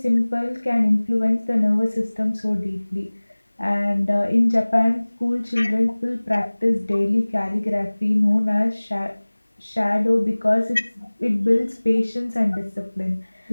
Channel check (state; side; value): inverted; both; correlation -1.00